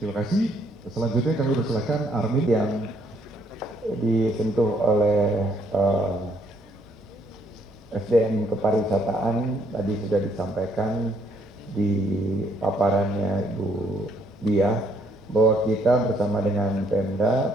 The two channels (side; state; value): both; normal; correlation 0.69